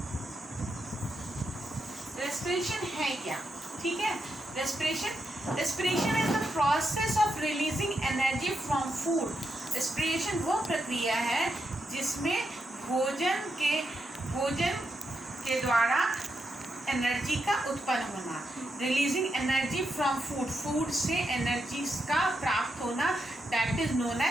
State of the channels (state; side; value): normal; both; correlation 0.84